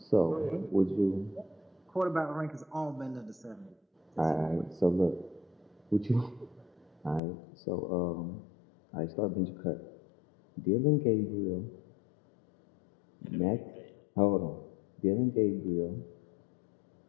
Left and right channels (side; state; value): right; drops out; at 7.2 s